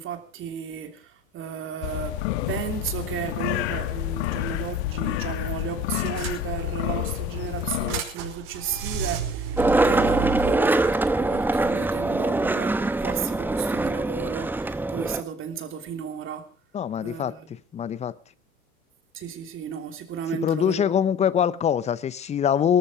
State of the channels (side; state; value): both; normal; correlation 0.49